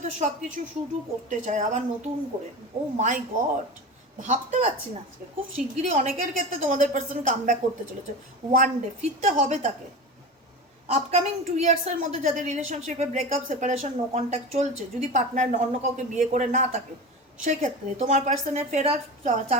সব কিছু শুরু করতে চায় আবার নতুন করে। ও মাই গড, ভাবতে পারছি না, আজকে খুব শিগগিরই অনেকের ক্ষেত্রে তোমাদের পার্সন কাম ব্যাক করতে চলেছে, ওয়ান ডে ফিরতে হবে তাকে। আপকামিং 2 ইয়ার্সের মধ্যে যাদের রিলেশনশিপে ব্রেকআপ, সেপারেশন, নো কন্ট্যাক্ট চলছে, যদি পার্টনার অন্য কাউকে বিয়ে করে না থাকে, সেক্ষেত্রে তোমার পার্সনের ফেরার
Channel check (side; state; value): both; normal; correlation 0.28